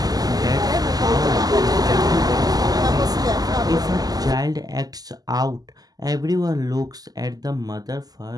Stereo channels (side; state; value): left; late; 0.18 ms